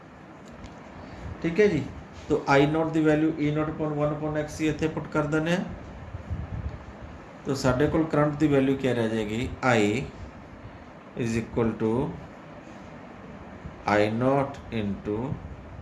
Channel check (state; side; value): identical; both; correlation 1.00